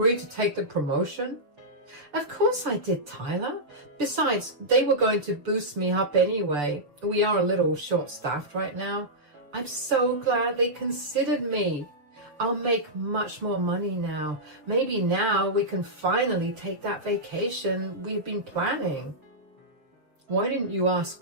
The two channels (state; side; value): late; left; 6.8 ms